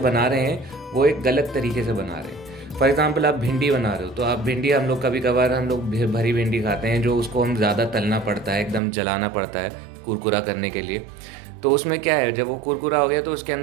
रहे हैं वो एक गलत तरीके से बना रहे हैं। फॉर एग्जांपल आप भिंडी बना रहे हो, तो आप भिंडी हम लोग कभी कभार भरी भिंडी खाते हैं, जो उसको हम ज़्यादा तलना पड़ता है, एकदम जलाना पड़ता है कुरकुरा करने के लिए। तो उसमें क्या है, जब वो कुरकुरा हो गया तो उसके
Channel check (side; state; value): left; drops out; at 8.8 s